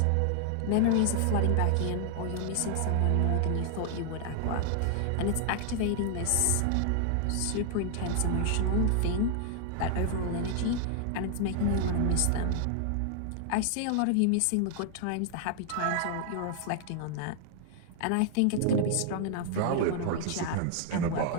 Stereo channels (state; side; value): different; both; correlation 0.00